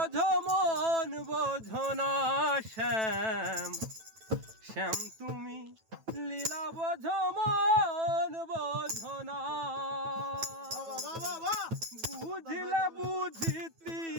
মন বোঝো না। শ্যাম শ্যাম তুমি লীলা বোঝো মন বোঝো না। বুঝিলে বুঝিতি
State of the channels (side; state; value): left; late; 9.1 ms